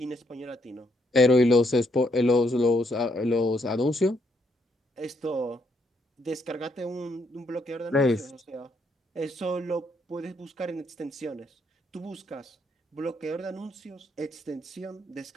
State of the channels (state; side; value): normal; both; correlation 0.74